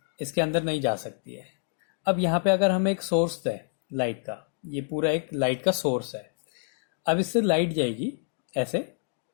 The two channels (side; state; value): right; silent; digital silence